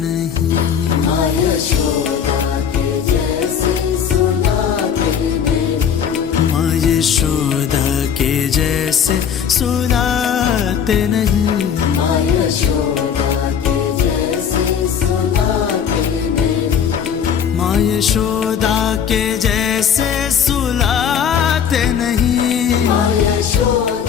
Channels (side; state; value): right; quieter; 7.8 dB